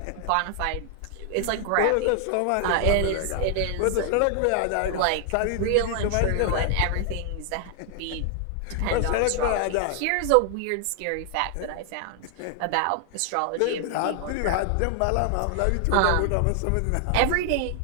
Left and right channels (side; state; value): both; different; correlation 0.00